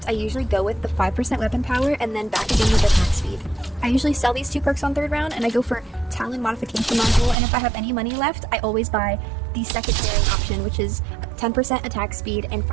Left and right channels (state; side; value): drops out; left; at 7.4 s